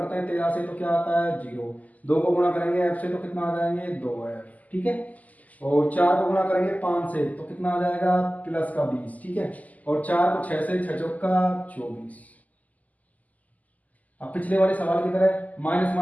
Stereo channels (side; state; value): right; late; 0.077 ms